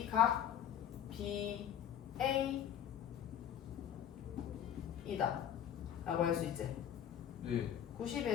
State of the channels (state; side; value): quieter; right; 9.9 dB